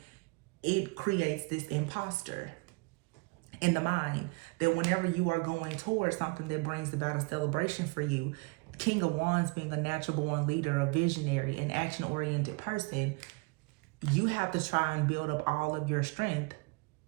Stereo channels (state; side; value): quieter; left; 29.5 dB